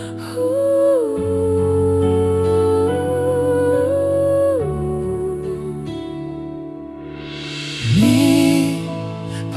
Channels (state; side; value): identical; both; correlation 1.00